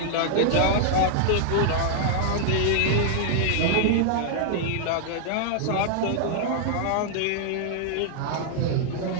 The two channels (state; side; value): different; both; correlation -0.01